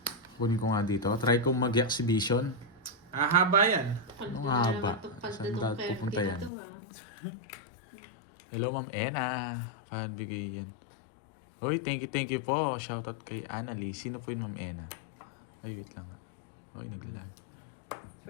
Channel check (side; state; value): right; drops out; at 6.5 s